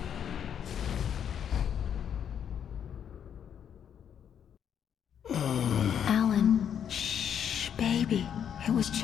Alan, shh, baby. It was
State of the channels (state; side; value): quieter; right; 8.6 dB